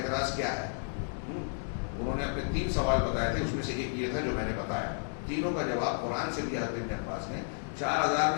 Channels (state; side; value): silent; right; digital silence